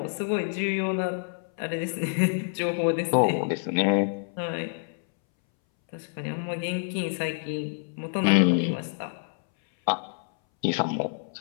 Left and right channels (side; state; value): right; silent; 60 dB below the other